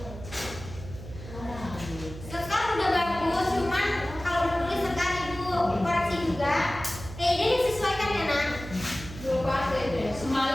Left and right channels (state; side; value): noise; right; hum, 13 dB below the sound